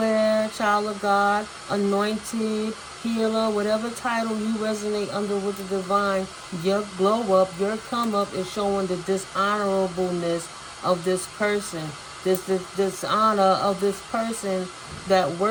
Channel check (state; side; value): identical; both; correlation 1.00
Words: child of God, anointed, healer, whatever title you resonate under with the divine, your glow up, your come up is showing the dishonorableness of this person. This dishonor of this person that